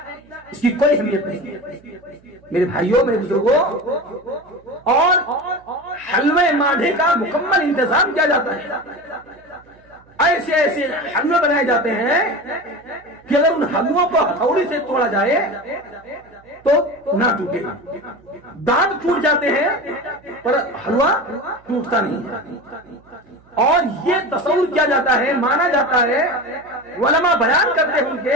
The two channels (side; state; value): right; noise; hum, 29 dB below the sound